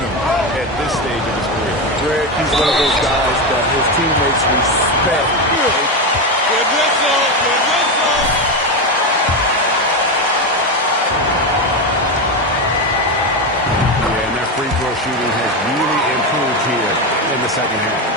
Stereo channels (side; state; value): both; normal; correlation 0.13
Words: at this stage of his career. Greg, he's one of those guys that his teammates respect. Good whistle, good whistle. Yeah, and their free throw shooting has really improved here in the second